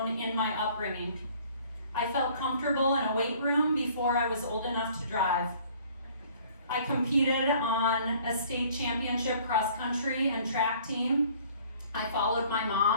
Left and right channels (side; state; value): both; inverted; correlation -0.55